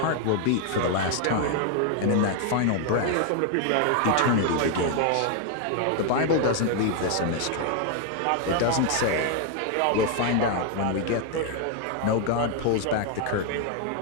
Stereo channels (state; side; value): different; both; correlation 0.00